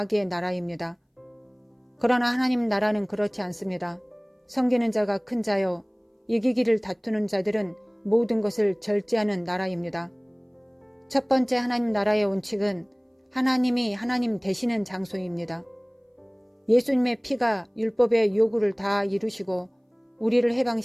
나라입니다. 그러나 하나님 나라는 그렇지 않습니다. 섬기는 자가 큰 자요, 이기기를 다투는 자들은 모든 것을 절제하는 나라입니다. 첫 번째 하나님 나라의 원칙은 하나님이 하나님 되시는 장소입니다. 예수님의 피가 율법의 요구를 다 이루시고 우리를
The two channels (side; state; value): both; identical; correlation 1.00